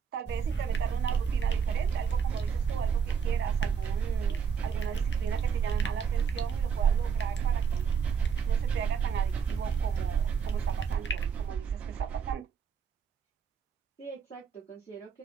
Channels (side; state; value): left; quieter; 6.7 dB